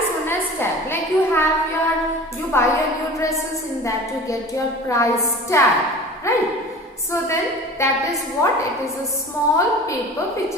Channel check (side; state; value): both; normal; correlation 0.39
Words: known as tag. Like you buy your new dresses, in that you get your price tag, right? So then that is what? It is a small paper which